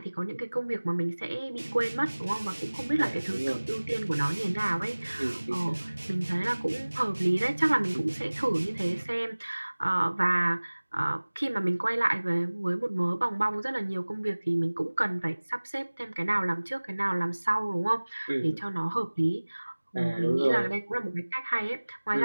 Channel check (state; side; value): inverted; both; correlation -1.00